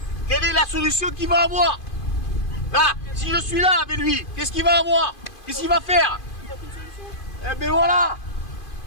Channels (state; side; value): late; right; 2.5 ms